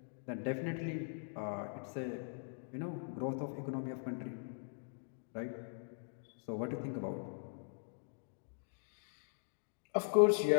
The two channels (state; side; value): silent; right; digital silence